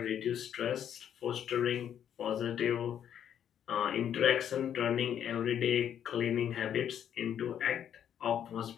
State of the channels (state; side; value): quieter; right; 9.4 dB